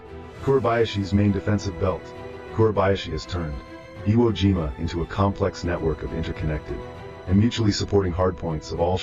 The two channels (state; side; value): identical; both; correlation 1.00